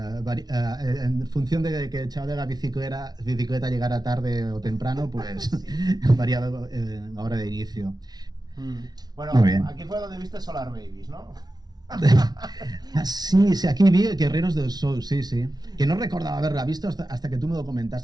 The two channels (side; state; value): left; late; 0.19 ms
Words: función de que el chaval de la bicicleta llegara tarde o temprano, pues sí. Variaba la hora de inicio. Bueno, aquí fue donde viste Solar Babies, ¿no? Sí, aquí vi Guerreros del Sol, sí. Que no recordaba haberla visto hasta que tú me lo